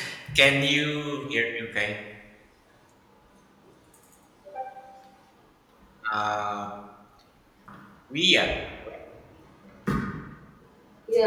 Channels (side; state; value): both; identical; correlation 1.00